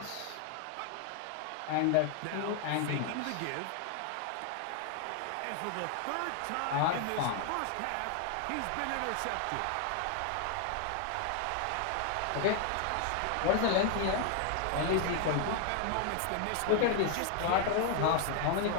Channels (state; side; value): different; both; correlation 0.00